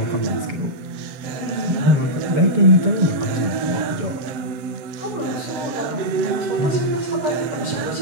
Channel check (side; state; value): left; late; 7.6 ms